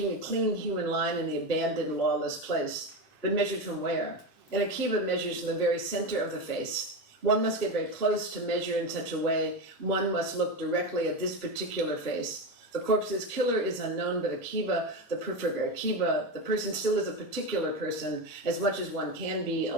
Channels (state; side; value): normal; both; correlation 0.17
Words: a clean human line in the abandoned lawless place. But measured from where? And Akiva measures from the very center of the face. One must get very close to measure in such a way. One must look directly at this particular face. The corpse's killer is unknown, but Akiva, the person still is a particular person, as much as one can be,